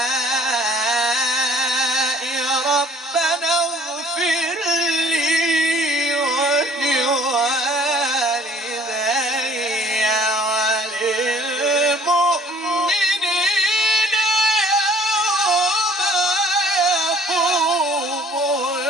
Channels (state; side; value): normal; both; correlation 0.55